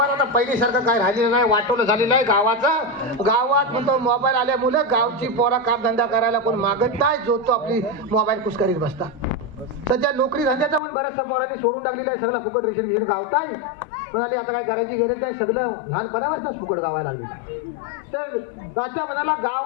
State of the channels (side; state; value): right; drops out; at 10.8 s